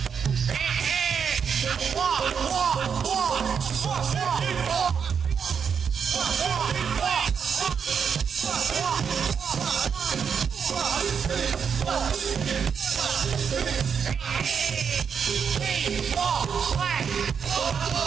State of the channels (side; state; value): left; quieter; 6.8 dB